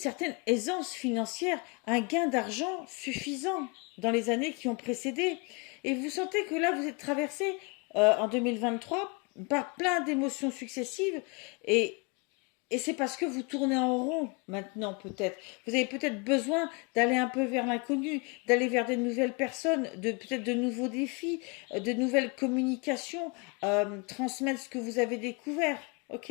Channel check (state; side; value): quieter; right; 31.1 dB